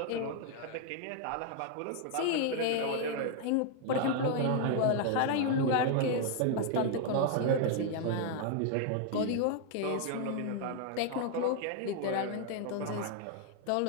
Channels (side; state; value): both; different; correlation 0.00